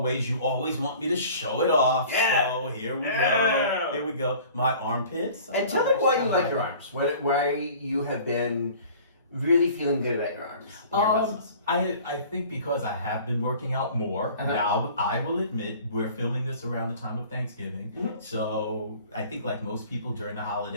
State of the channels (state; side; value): inverted; both; correlation -0.46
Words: you always want me to show it off. Yeah. So here we go. Here we go. My armpits. And tell them why you like your arms. Why you have been really feeling good about your arms. And your muscles. I think because I have been working out more. Now, I will admit, we're filming this around the time of Thanksgiving. Mm-hmm. So I think like most people during the